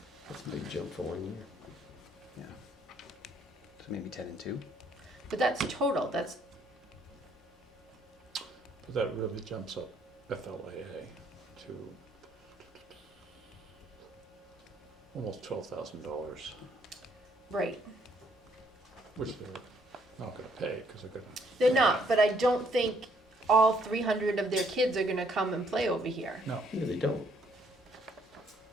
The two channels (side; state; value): both; normal; correlation 0.67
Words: That's a big jump for 1 year. Yeah. So maybe 10 and 2. But that's total. That's But that really jumps up FLAA to almost $12,000, right. which they're not gonna pay, because they're gonna, They're not, but I don't think all 300 of their kids are gonna come and play over here. no. Yeah, they don't.